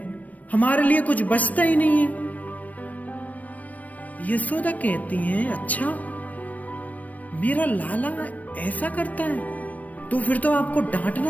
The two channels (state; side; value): late; right; 0.072 ms